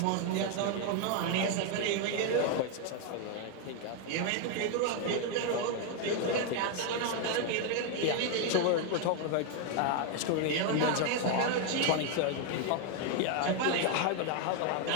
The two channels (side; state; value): both; different; correlation 0.01